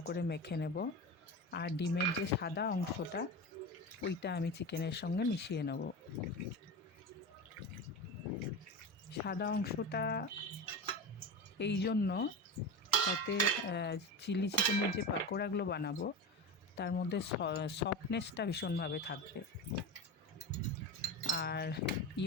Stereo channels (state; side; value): normal; both; correlation 0.23